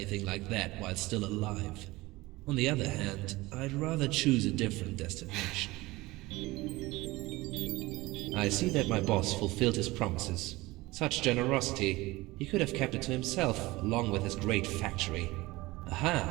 like that while still alive. On the other hand, I'd rather choose a different destination. I see that my boss fulfilled his promises. Such generosity, he could have kept it to himself, along with his great factory.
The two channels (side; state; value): left; quieter; 20.4 dB